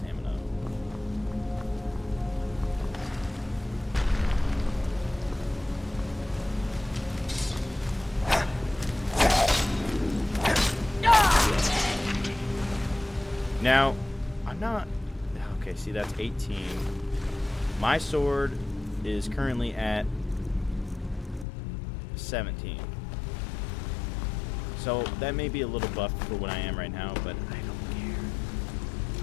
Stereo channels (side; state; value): right; drops out; at 21.5 s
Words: Now, I'm not... Okay, see, that's 18. My sword is currently at 17. So, that may be a little buff for what I am right now, but I don't care.